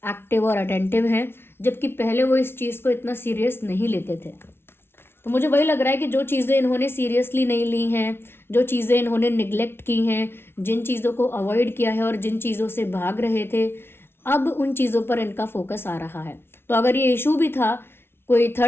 एक्टिव और अटेंटिव हैं, जबकि पहले वो इस चीज़ को इतना सीरियस नहीं लेते थे। तो मुझे वही लग रहा है कि जो चीज़ें इन्होंने सीरियसली नहीं ली हैं, जो चीज़ें इन्होंने निगलेक्ट की हैं, जिन चीज़ों को अवॉइड किया है और जिन चीज़ों से भाग रहे थे, अब उन चीज़ों पर इनका फोकस आ रहा है। तो अगर ये इशू भी था, कोई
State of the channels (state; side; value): late; right; 0.12 ms